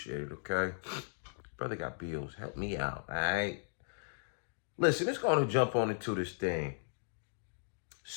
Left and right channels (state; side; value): silent; right; digital silence